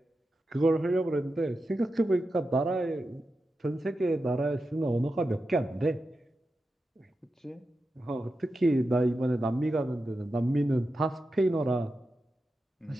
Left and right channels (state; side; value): normal; both; correlation 0.90